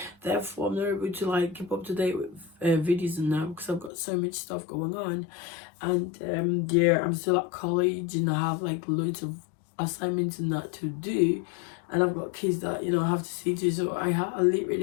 Therefore, I'm not able to like keep up to date with videos and that because I've got so much stuff going on. And yeah, I'm still at college and I have like loads of assignments and that to do, and I've got kids that I have to see to, so I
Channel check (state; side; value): drops out; right; at 3.9 s